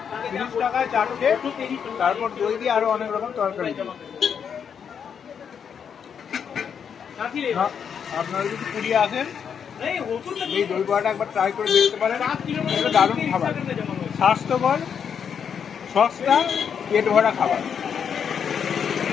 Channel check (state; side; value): quieter; right; 7.4 dB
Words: 30 টাকায় চারটে, তারপর দই দিয়ে আরো অনেক রকম তরকারি। আপনারা যদি পুরী আসেন এই দই বড়াটা একবার ট্রাই করে দেখতে পারেন। এটা দারুণ খাবার, স্বাস্থ্যকর, সস্তা, পেট ভরা খাবার।